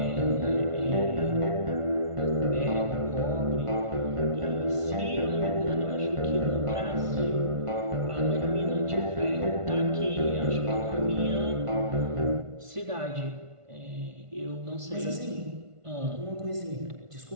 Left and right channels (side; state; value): left; late; 1.5 ms